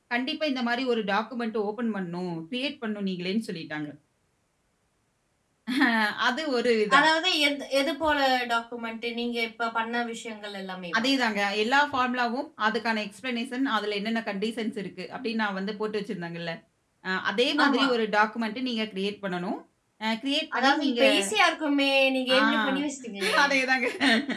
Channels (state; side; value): identical; both; correlation 1.00